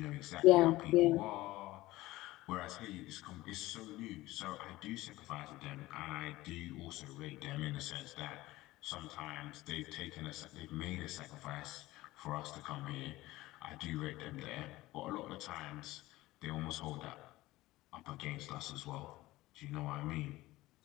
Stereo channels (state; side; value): quieter; right; 18.1 dB